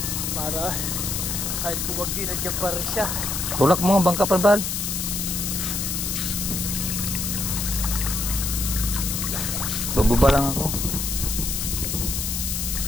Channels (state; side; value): noise; left; hiss, 2 dB below the sound